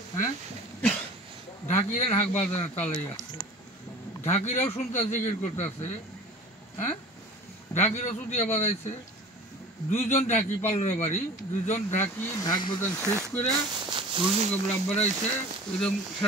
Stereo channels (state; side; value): normal; both; correlation 0.41